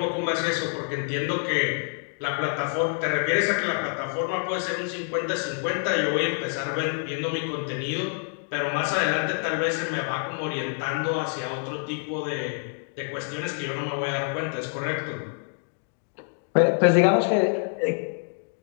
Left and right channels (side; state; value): right; silent; 60 dB below the other